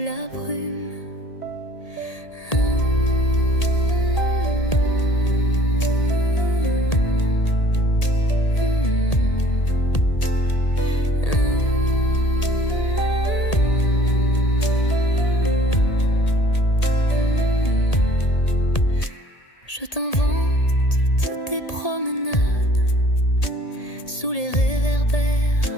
brume. Je t'invente toutes tes promenades sous les réverbères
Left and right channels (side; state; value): right; late; 1.8 ms